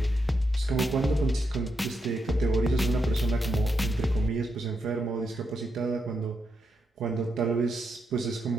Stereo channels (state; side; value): normal; both; correlation 0.83